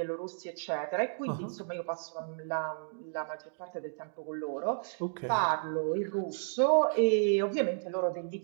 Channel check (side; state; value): left; silent; digital silence